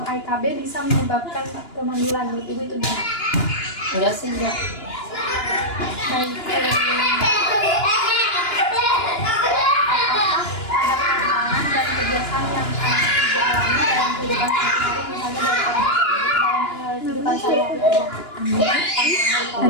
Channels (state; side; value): late; right; 2.9 ms